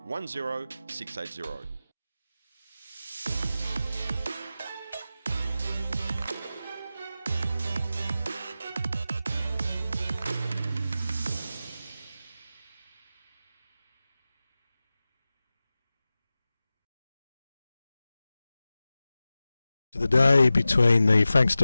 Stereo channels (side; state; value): both; inverted; correlation -0.94